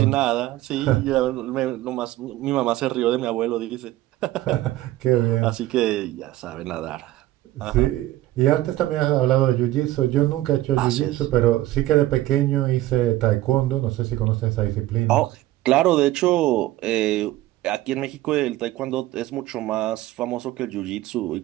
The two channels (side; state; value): left; quieter; 15.8 dB